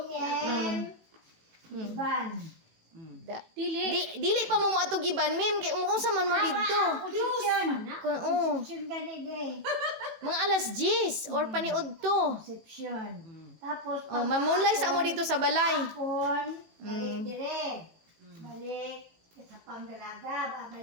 Iban. Dili pa mo atog iban, ma'am, kay unsa man mo didto. Conception. Oh, Conception gani day. mga alas 10 or paniud to. Conception. Tapos, Oh, mamunlay sa mo dito sa balay. hapon, balik dire. Balik sa pangdalaga,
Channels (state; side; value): late; left; 18 ms